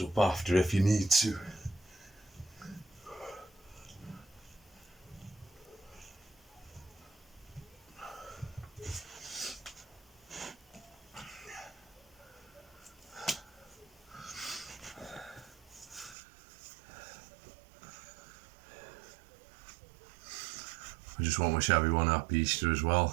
up after if you need to. I just want to wish everyone happy Easter as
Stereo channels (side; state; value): left; drops out; at 16.2 s